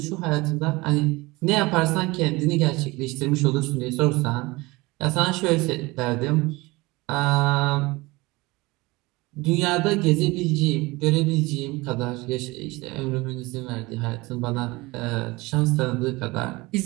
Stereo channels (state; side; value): quieter; left; 22.4 dB